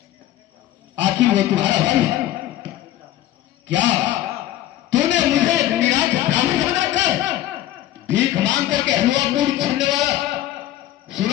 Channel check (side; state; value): right; quieter; 13.5 dB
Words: आखिर वो तुम्हारा भाई है क्या? तूने मुझे निराश ब्राह्मण बनाकर भीख मांग करके हलवा पूरी करने वाला।